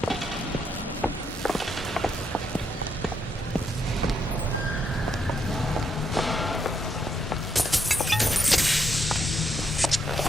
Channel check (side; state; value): both; normal; correlation 0.77